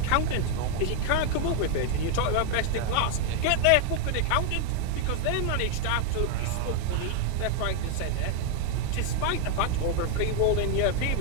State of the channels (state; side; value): different; both; correlation 0.00